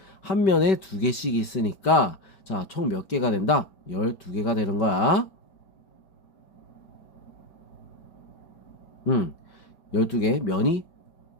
한 면에 2개씩 있으니까 자, 총 몇 개가 된다? 12개가 되는 거야. 12개 면이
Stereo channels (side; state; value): right; late; 5.2 ms